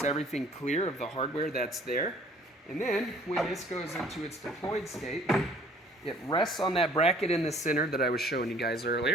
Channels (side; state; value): both; normal; correlation 0.55